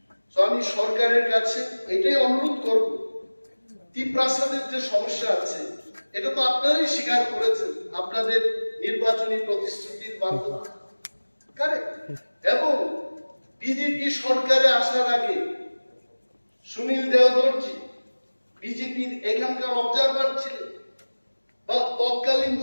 তো আমি সরকারের কাছে এটাই অনুরোধ করব, ত্রিপ্রাসাদের যে সমস্যা আছে এটা তো আপনারাই স্বীকার করেছেন আপনাদের নির্বাচনী প্রতিশ্রুতির মাধ্যমে, কারেক্ট? এবং বিজেপি সরকারে আসার আগে সুনীল দেওধরজি বিজেপির এখানকার অবজারভার ছিলেন, বা তৎকালীন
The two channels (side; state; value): both; inverted; correlation -1.00